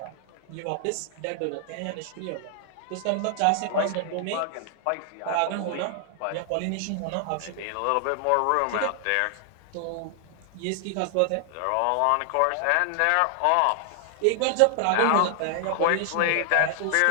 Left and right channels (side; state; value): both; different; correlation 0.00